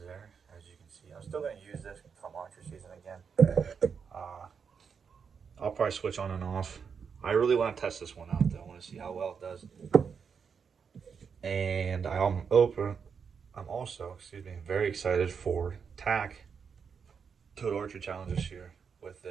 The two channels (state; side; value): quieter; left; 6.3 dB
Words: there, as you can see. I'm still going to use this come archery season again. I'll probably switch on and off. I really want to test this one out, though. I want to see how well it does. And I'm also, very excited for TAC Total Archery Challenge this year with